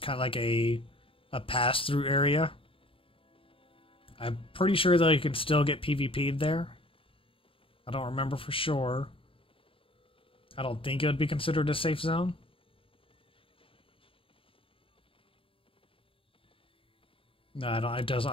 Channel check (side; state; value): right; late; 0.26 ms